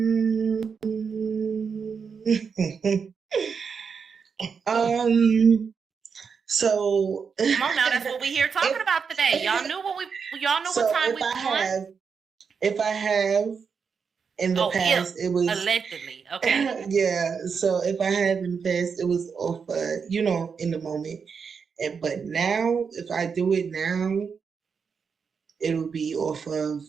So come on now, that's what we here talking about today. Y'all knew what time we was. If I have in the past, it was allegedly. Okay. Yeah. So if I have in the past, it was off in the moment. But now, if I do it now, it'll be off of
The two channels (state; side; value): quieter; left; 6.0 dB